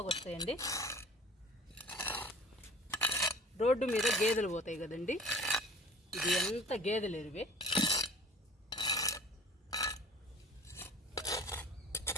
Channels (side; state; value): both; normal; correlation 0.45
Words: వస్తాయండి. రోడ్డు మీద గేదెలు పోతాయి కదండి, ఇది ఎంత గేదెలు ఎరువే.